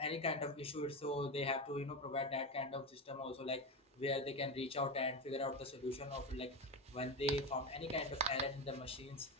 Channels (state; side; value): normal; both; correlation 0.17